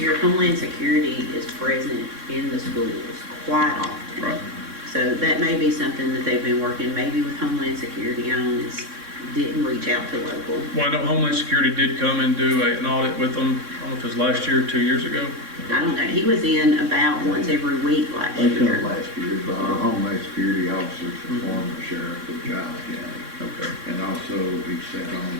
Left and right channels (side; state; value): left; late; 3.6 ms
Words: Homeland Security is present in the schools quite often. Right. So that may be something that they've been working maybe with Homeland Security on, is didn't reach out to local. Well, I know Homeland Security did come and do an audit with them, I don't know if it was last year or 2 years ago. I don't know, he was in about once every week last They come year. last year, but our Homeland Security officers, the former sheriff of Giles County. Okay. And also he sat